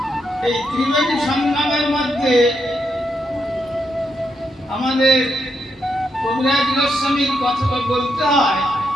এই ত্রিবেণী সংগ্রামের মধ্যে আমাদের কবিরাজ গোস্বামীর কথা বলতে হয়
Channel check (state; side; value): normal; both; correlation 0.81